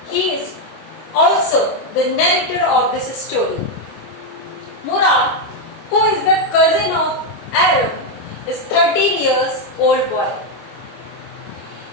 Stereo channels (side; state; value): right; late; 25 ms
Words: he is also the narrator of this story. Murad, who is the cousin of Aram, is 13-year-old boy.